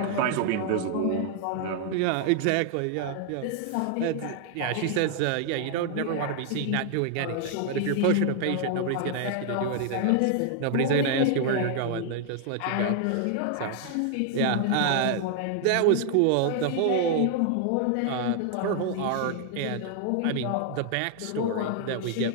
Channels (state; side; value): different; both; correlation 0.00